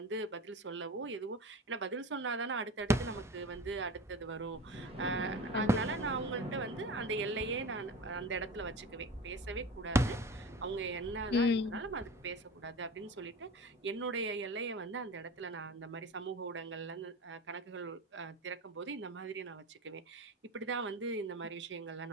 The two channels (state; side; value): normal; both; correlation 0.33